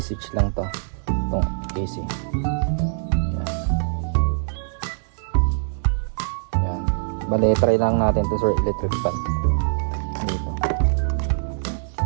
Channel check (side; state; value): left; silent; digital silence